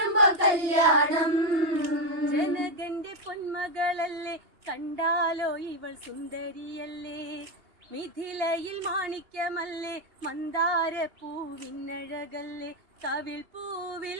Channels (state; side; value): late; left; 2.8 ms